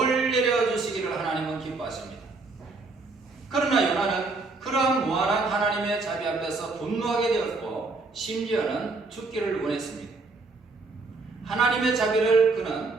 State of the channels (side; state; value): left; quieter; 3.7 dB